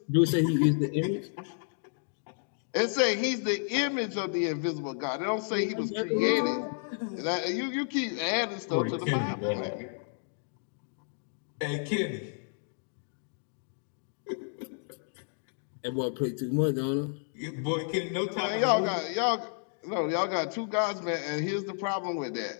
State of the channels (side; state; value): right; silent; digital silence